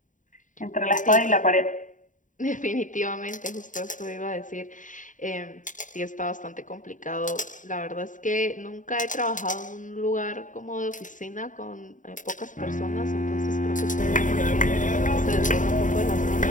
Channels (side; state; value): right; late; 0.37 ms